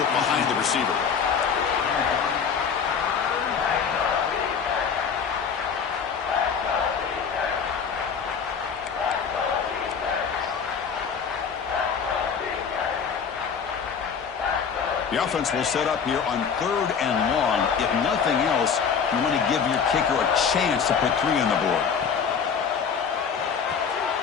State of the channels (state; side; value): quieter; right; 6.6 dB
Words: it behind the receiver. The offense will set up here on 3rd and long. If nothing else, you want to give your kicker a chance to put 3 on the board.